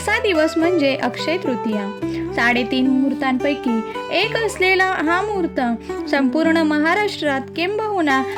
दिवस म्हणजे अक्षय तृतीया. 3.5 मुहूर्तांपैकी एक असलेला हा मुहूर्त संपूर्ण महाराष्ट्रात किंबहुना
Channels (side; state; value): both; identical; correlation 1.00